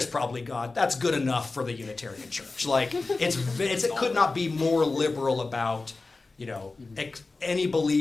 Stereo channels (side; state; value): right; quieter; 3.6 dB